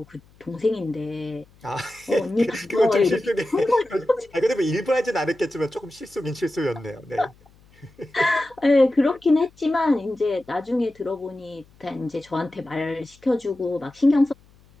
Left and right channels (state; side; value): noise; left; hum, 29 dB below the sound